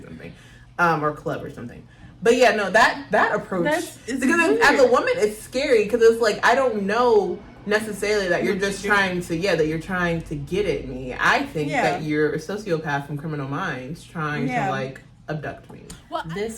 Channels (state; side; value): identical; both; correlation 1.00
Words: something, or club or something. But, yeah, no, that approach, because as a woman, it's scary, because it's, like, I don't know necessarily that you're just trying to get at me. I think that you're a sociopath from Criminal Minds trying to like abduct me. Well,